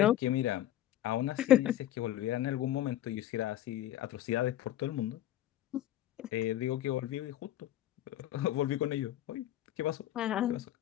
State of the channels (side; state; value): right; quieter; 12.9 dB